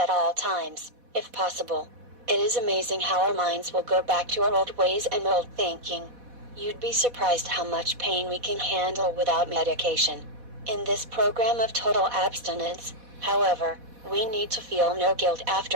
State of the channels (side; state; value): left; late; 4.1 ms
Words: all times, if possible. It is amazing how our minds will go back to our old ways and old thinking. You'd be surprised how much pain we can handle without medication. In this program of total abstinence, however, we need to feel no guilt after